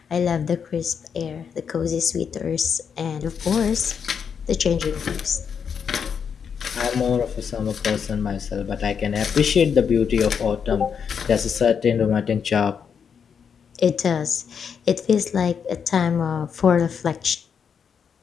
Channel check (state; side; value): quieter; right; 6.9 dB